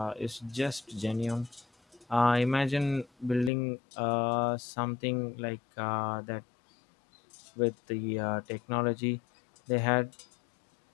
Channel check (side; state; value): right; drops out; at 3.5 s